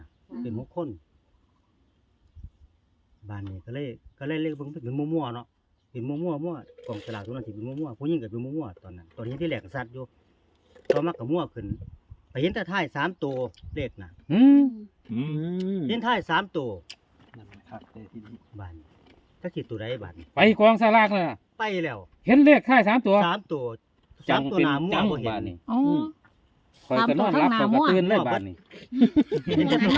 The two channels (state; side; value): identical; both; correlation 1.00